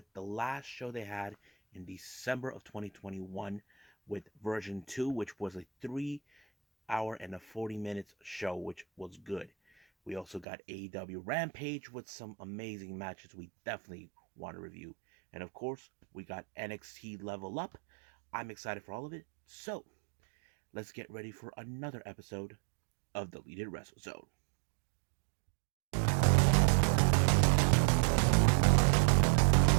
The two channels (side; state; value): left; drops out; at 10.5 s